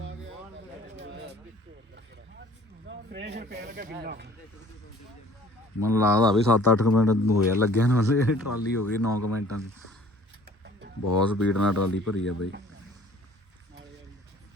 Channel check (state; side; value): normal; both; correlation 0.52